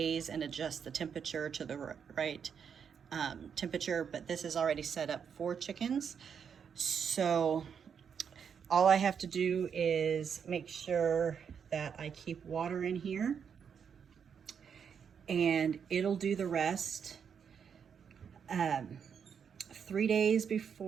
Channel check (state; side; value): quieter; left; 7.2 dB